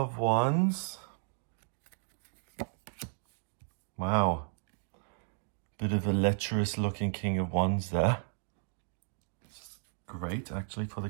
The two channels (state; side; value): silent; left; digital silence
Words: Wands. Wow. Bit of a lecherous looking King of Wands there. Great, actually, for the